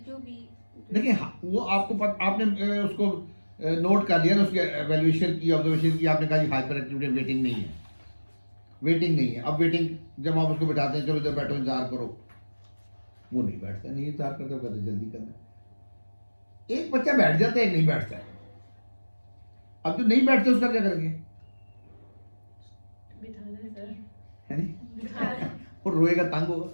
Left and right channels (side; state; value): both; inverted; correlation -1.00